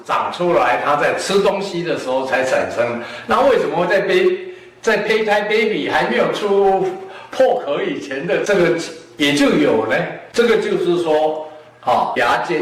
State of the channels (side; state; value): both; identical; correlation 1.00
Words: 长出来，它在吃东西的时候才产生，那为什么会在胚胎 baby 还没有出破壳以前的这个也就有呢？这个就是说牙